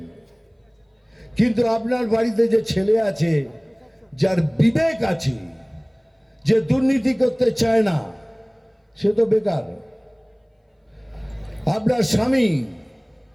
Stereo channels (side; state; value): both; identical; correlation 1.00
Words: কিন্তু আপনার বাড়িতে যে ছেলে আছে, যার বিবেক আছে, যে দুর্নীতি করতে চায় না, সে তো বেকার। আপনার স্বামী